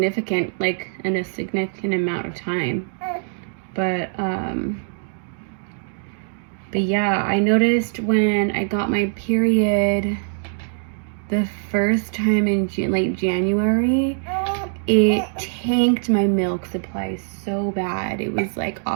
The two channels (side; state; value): left; silent; digital silence